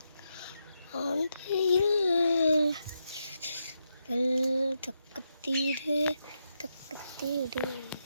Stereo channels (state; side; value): inverted; both; correlation -0.84